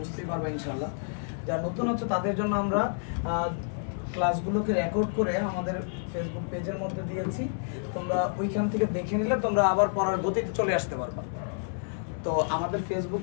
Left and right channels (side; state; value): right; silent; digital silence